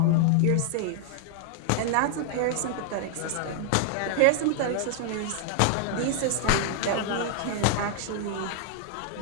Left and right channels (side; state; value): both; different; correlation 0.00